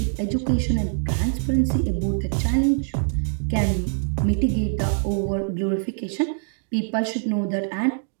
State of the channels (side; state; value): left; silent; 63 dB below the other